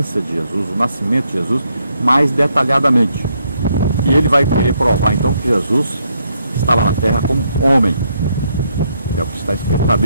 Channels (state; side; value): inverted; both; correlation -0.75